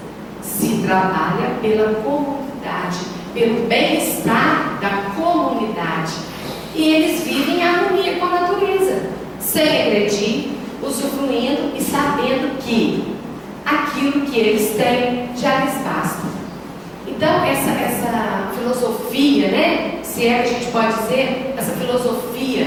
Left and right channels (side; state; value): both; identical; correlation 1.00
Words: Se trabalha pela comunidade, pelo bem-estar da comunidade. E eles vivem em harmonia com a natureza, sem agredir, usufruindo e sabendo que aquilo que eles têm já lhes basta. Então, essa filosofia, né, se é que a gente pode dizer, essa filosofia